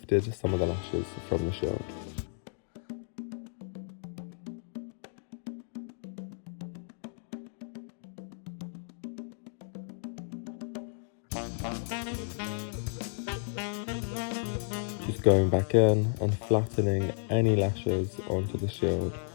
some of the lashes from the shield. Just going back in and flattening any lashes onto the shield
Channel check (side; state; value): right; silent; digital silence